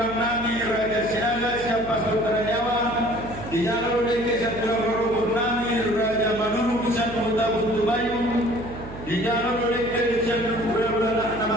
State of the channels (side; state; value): right; noise; hum, 12 dB below the sound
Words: Raja Sinaga siapa Sultan Jawa, di jalur DKI Saturang Nami Raja Manuru Pusat Kota Buntu Bayu, di jalur DKI Saturang